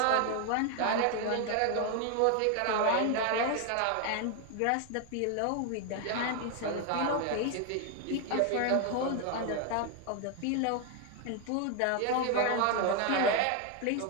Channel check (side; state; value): both; different; correlation 0.01